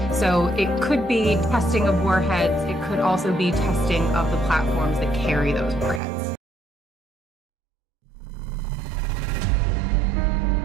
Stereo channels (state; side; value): drops out; left; at 6.0 s